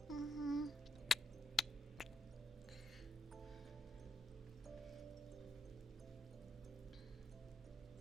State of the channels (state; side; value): normal; both; correlation 0.81